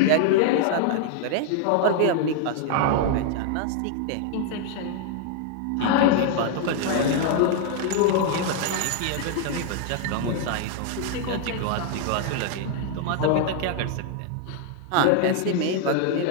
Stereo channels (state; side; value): different; both; correlation 0.00